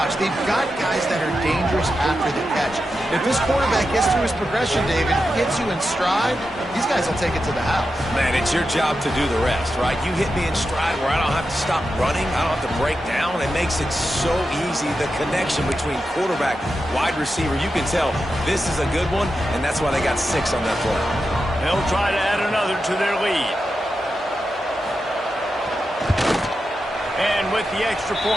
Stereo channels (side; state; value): both; normal; correlation 0.89